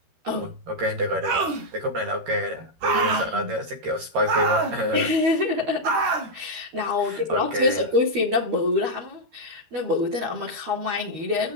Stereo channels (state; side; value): late; left; 13 ms